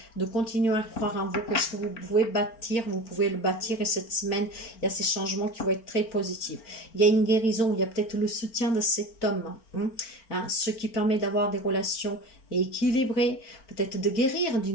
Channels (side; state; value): right; late; 4.4 ms